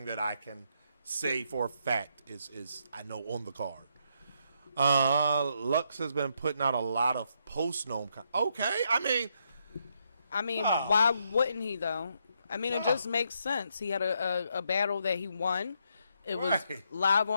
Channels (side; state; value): both; inverted; correlation -0.77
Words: that I can say for a fact is I know on the card. Lux has been putting out a lot of post-gnome. Okay, I mean, why wouldn't he though? I mean, it just makes sense. He had a battle that he won. It was live